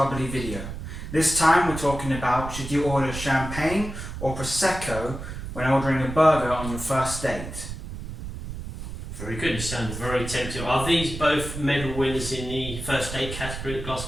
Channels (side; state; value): right; noise; rumble, 8 dB below the sound